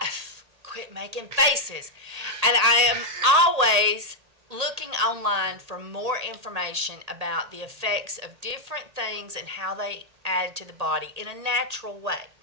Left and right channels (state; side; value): late; left; 1.8 ms